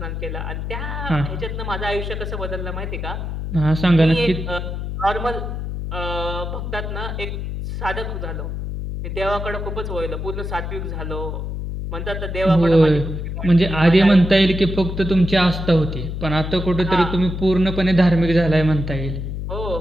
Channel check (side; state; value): left; noise; hum, 5 dB below the sound